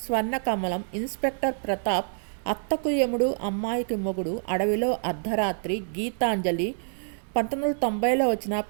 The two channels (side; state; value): left; silent; digital silence